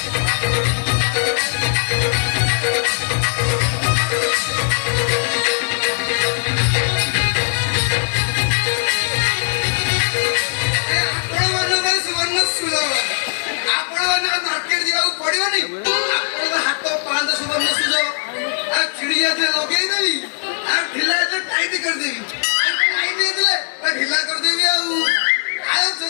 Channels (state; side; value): silent; right; digital silence